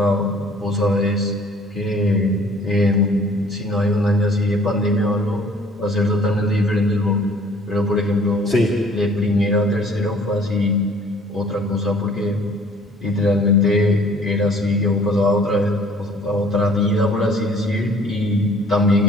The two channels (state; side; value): normal; both; correlation 0.54